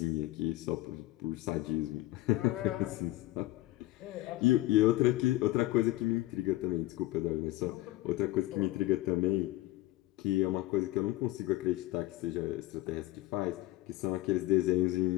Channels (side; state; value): right; quieter; 17.5 dB